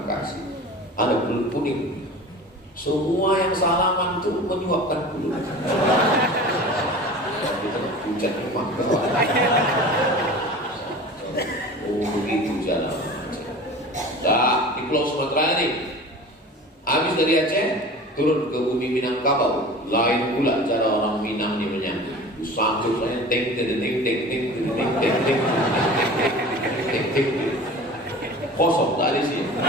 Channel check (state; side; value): normal; both; correlation 0.38